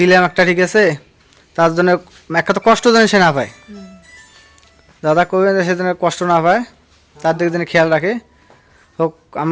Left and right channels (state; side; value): identical; both; correlation 1.00